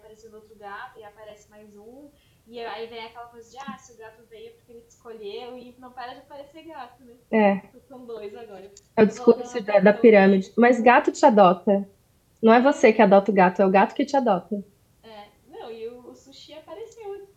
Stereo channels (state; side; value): identical; both; correlation 1.00